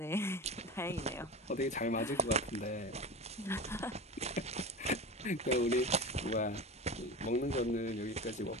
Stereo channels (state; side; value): normal; both; correlation 0.29